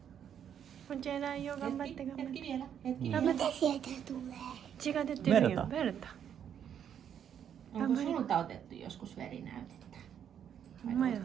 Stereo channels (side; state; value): left; quieter; 8.9 dB